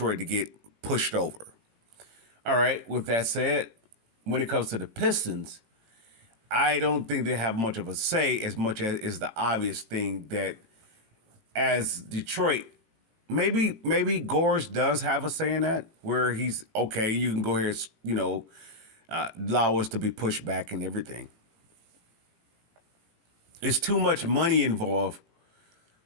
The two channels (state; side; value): late; left; 18 ms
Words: to get pushed over. All right, with that said, when it comes to the Pistons, I don't think they have much of a say as much as is the obvious thing that as Detroit, maybe Gores does have a say in that, where he's okay, you can go here, allow us to be pushed back and everything. It's too much money involved